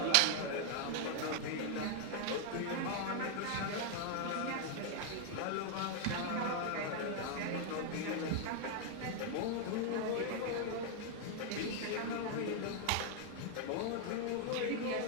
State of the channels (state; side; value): different; both; correlation 0.00